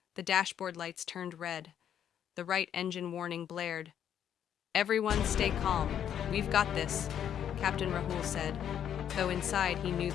The dashboard lights turned red. The right engine warning blared. "Everyone stay calm. We've got this," Captain Rahul said, though inside he knew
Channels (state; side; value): quieter; right; 9.5 dB